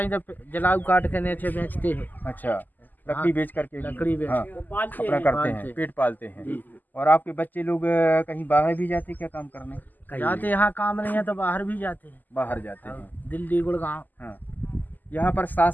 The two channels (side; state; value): right; late; 0.085 ms